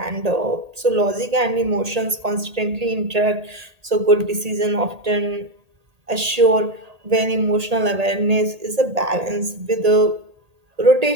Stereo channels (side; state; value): left; late; 1.8 ms